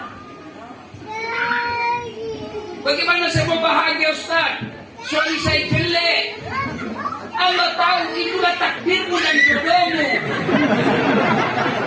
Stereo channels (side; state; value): both; identical; correlation 1.00